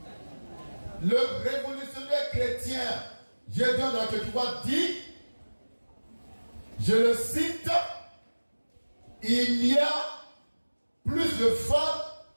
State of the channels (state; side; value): inverted; both; correlation -1.00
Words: Le révolutionnaire chrétien Gédéon de la Ketouva dit, je le cite, il y a plus de femmes